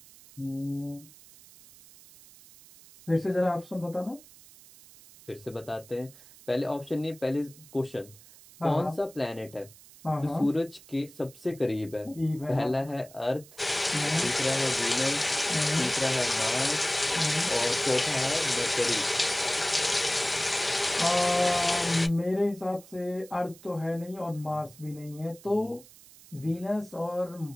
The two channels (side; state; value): right; noise; hiss, 22 dB below the sound